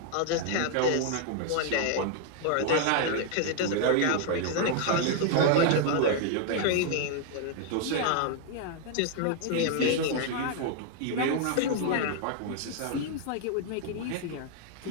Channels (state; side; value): different; both; correlation 0.00